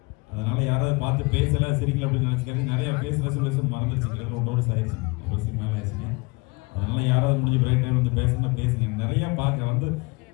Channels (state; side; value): quieter; right; 26.6 dB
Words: அதனால யாராவது பார்த்து பேசல சிரிக்கல அப்படின்னு நினைச்சுக்காரு. நிறைய பேசுற சொல்ல மறந்துருச்சு. கிட்டத்தட்ட 1 வருஷம் ஆயிடுச்சு. 1 வருஷத்துக்கு மேல ஆயிடுச்சுங்க. அதனால யாராவது முடிஞ்ச பிரேக் டைம் வந்து பேசணும்னா பேசுங்க. நிறைய பார்க்க வந்து